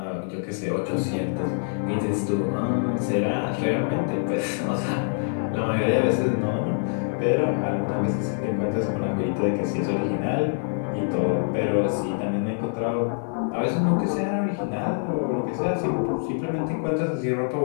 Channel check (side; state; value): right; silent; 58 dB below the other